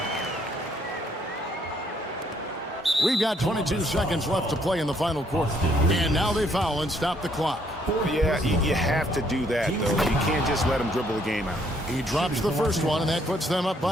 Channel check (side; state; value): both; normal; correlation 0.68